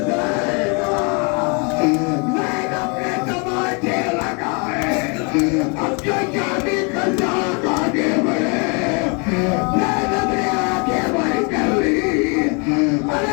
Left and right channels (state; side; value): quieter; right; 33.9 dB